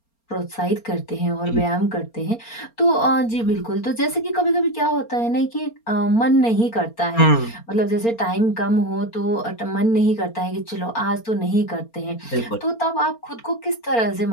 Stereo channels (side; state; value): right; late; 4.3 ms